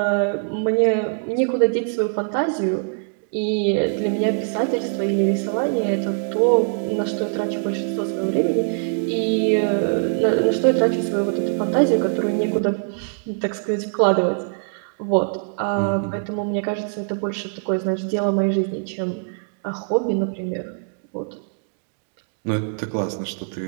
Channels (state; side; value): silent; left; digital silence